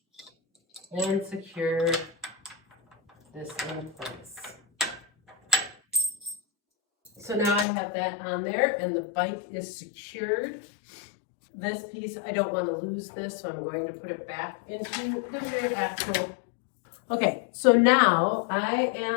and secure this in place. So now I have that on there and the bike is secured. This piece, I don't want to lose this, so I'm going to put it back into the rear axle. Okay, so now I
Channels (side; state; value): right; drops out; at 7.7 s